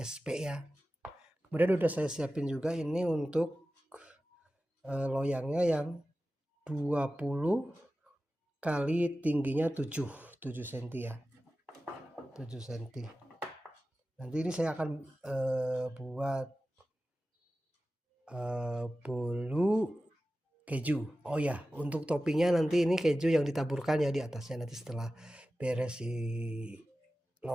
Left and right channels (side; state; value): both; normal; correlation 0.95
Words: ya. Kemudian udah saya siapin juga ini untuk loyangnya yang 20 kali tingginya 7 cm ya, 7 cm. Nanti ini saya akan buat bolu keju. Oh ya, untuk toppingnya nanti ini keju yang ditaburkan ya di atasnya, nanti setelah beres